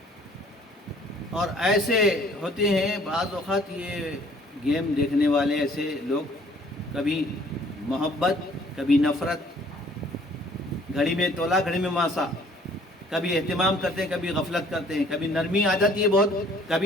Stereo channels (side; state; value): both; normal; correlation 0.57